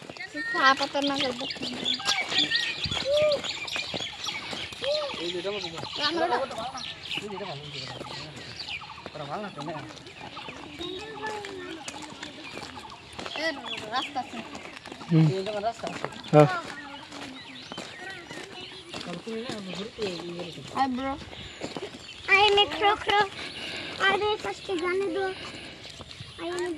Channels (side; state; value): both; identical; correlation 1.00